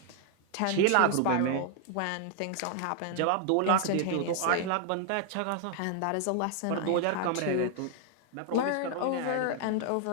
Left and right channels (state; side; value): different; both; correlation 0.00